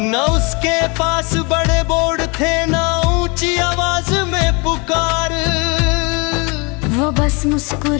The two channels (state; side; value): quieter; right; 30.1 dB